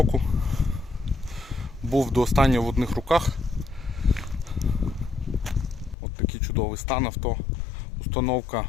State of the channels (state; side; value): drops out; right; at 6.0 s